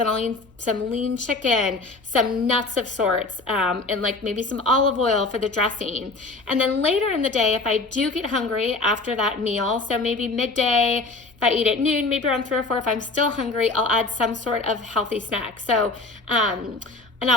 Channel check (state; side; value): quieter; right; 3.4 dB